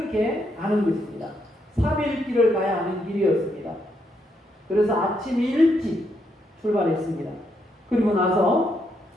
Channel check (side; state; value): both; normal; correlation 0.77